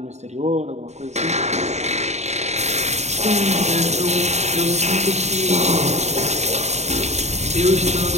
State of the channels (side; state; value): left; late; 0.32 ms